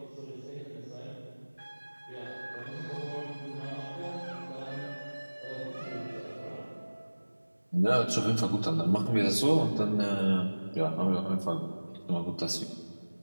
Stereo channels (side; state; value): both; inverted; correlation -1.00